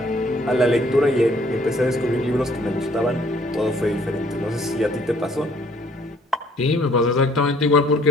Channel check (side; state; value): both; normal; correlation 0.62